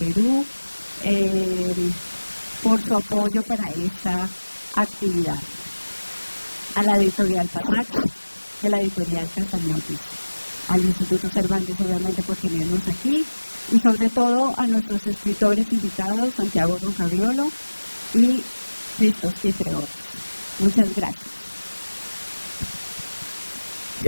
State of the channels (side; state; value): both; inverted; correlation -1.00